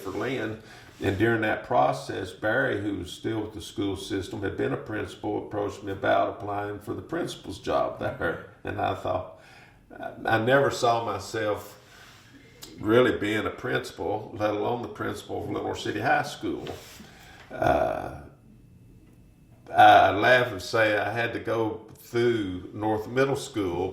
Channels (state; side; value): identical; both; correlation 1.00